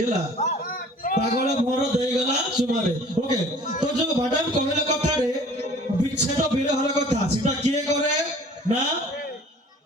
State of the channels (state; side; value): normal; both; correlation 0.50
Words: हला पागल भर देई गला सुमारे ओके तो जो मैडम कहले कथा रे विच्छेद विरहर कथा सेटा किए करे ना